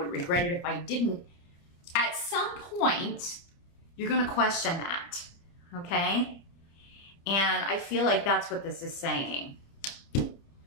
regret it if I didn't. At some point, you're going to question that. Okay. And I feel like that's what this is saying.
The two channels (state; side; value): late; right; 29 ms